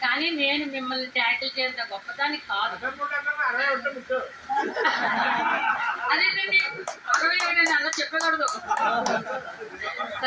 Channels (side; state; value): both; identical; correlation 1.00